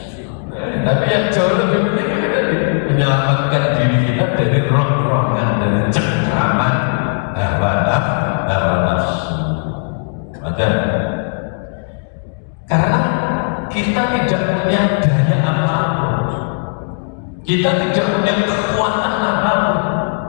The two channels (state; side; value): silent; right; 62 dB below the other